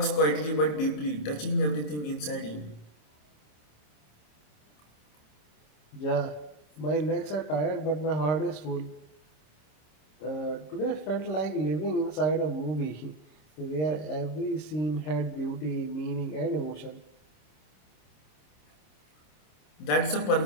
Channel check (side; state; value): right; late; 27 ms